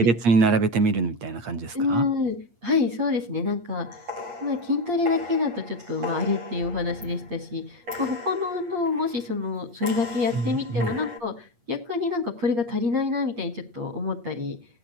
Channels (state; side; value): late; left; 8.5 ms